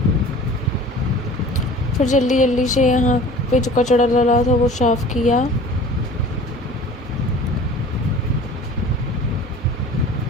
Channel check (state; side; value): normal; both; correlation 0.43